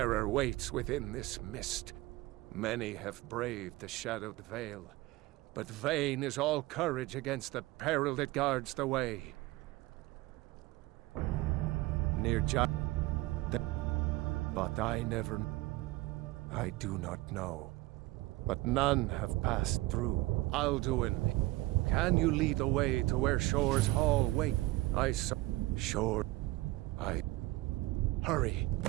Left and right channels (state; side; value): quieter; left; 19.2 dB